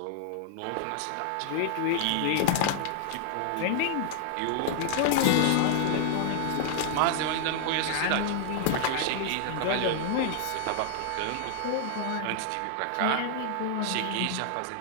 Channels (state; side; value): different; both; correlation -0.01